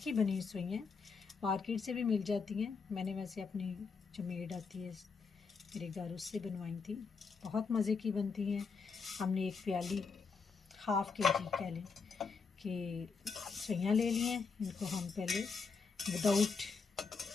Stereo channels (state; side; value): quieter; right; 5.0 dB